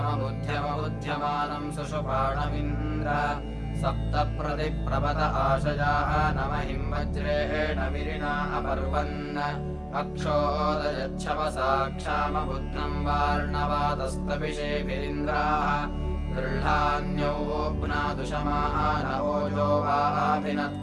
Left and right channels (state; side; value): identical; both; correlation 1.00